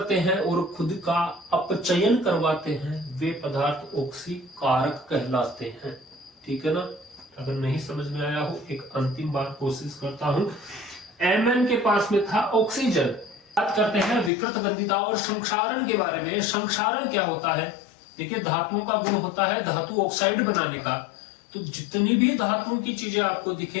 हैं और खुद का अपचयन करवाते हैं वे पदार्थ ऑक्सीकारक कहलाते हैं। ठीक है ना? अगर नहीं समझ में आया हो, एक अंतिम बार कोशिश करता हूं। Mn के पास में था ऑक्सीजन। बात करते हैं विकृत गंधिता और संक्षारण के बारे में। संक्षारण क्या होता है? देखिए, धातुओं का गुण होता है धातु ऑक्साइड बनाने का। तो जितनी भी धातुओं की चीजें आपको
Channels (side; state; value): right; drops out; at 14.3 s